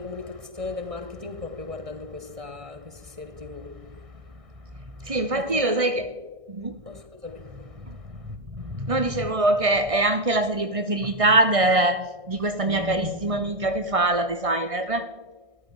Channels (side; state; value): left; late; 1.6 ms